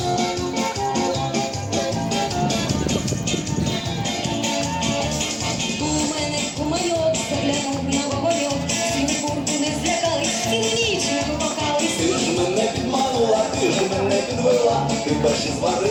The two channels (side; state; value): both; identical; correlation 1.00